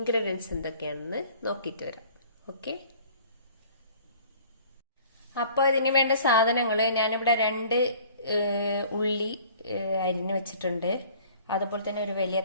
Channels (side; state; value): both; inverted; correlation -0.51